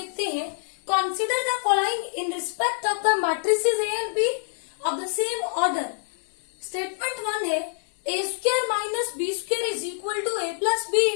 हैं। Consider the following in respect of the matrices A and B of the same order. Statement 1 है a square minus B square is equal to a plus B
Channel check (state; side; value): silent; right; 61 dB below the other